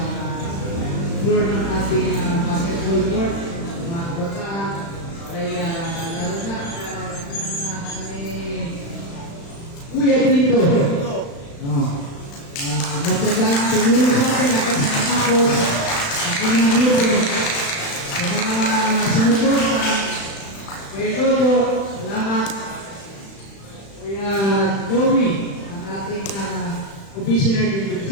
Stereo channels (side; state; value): right; late; 35 ms